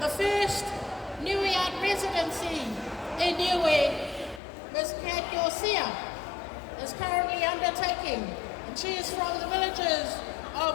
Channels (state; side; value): drops out; right; at 4.4 s